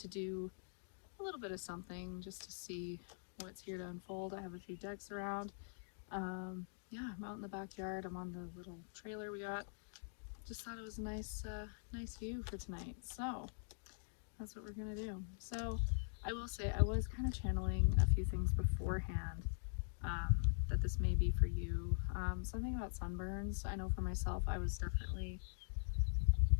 do a little bit of something just to see what's here to unfold. I have a few decks around. Yeah, I'm out in the backyard. I'm on the little trailer we got. Just thought it was a nice view for tonight. So that's what we're gonna do. So I will say I was kind of channeling a few things beforehand that this may be for you. Something about sunburns. I know for myself I was definitely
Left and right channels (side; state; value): right; silent; digital silence